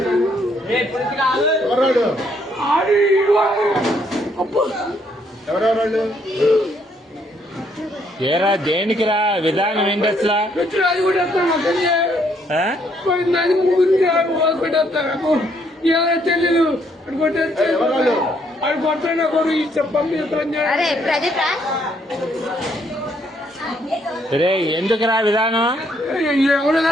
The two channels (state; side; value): normal; both; correlation 0.70